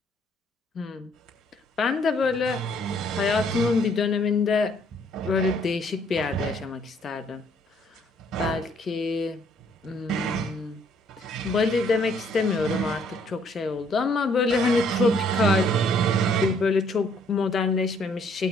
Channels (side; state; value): both; normal; correlation 0.64